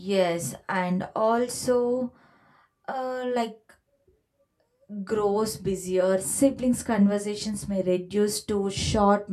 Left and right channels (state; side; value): identical; both; correlation 1.00